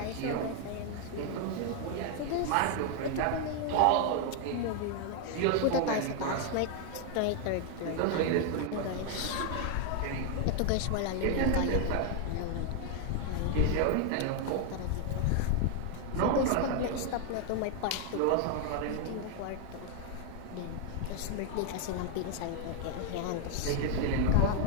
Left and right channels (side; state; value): both; different; correlation 0.00